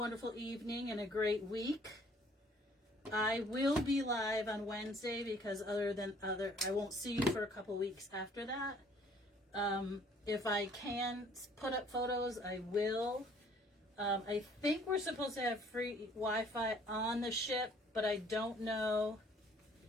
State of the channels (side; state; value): both; normal; correlation 0.58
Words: evening and a great week. I will be live on Wednesday because I won't see you for a couple weeks after that. If I can put up photos, I will. I think we're supposed to have free Wi-Fi on the ship but I don't know.